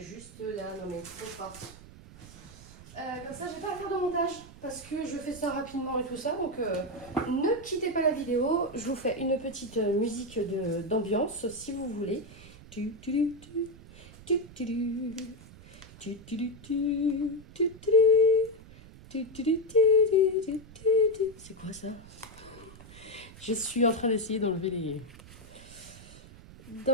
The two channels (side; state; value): right; noise; rumble, 19 dB below the sound